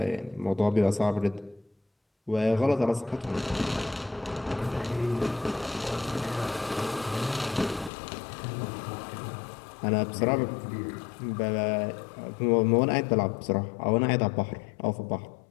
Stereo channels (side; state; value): right; drops out; at 7.9 s